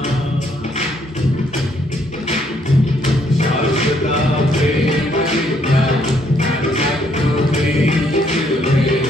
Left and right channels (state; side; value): normal; both; correlation 0.69